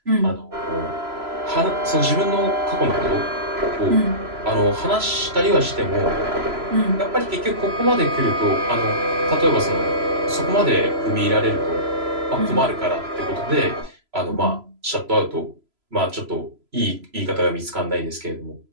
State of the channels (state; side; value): late; left; 3.0 ms